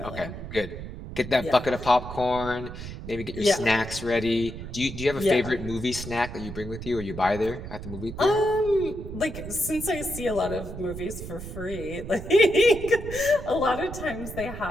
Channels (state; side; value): noise; right; rumble, 10 dB below the sound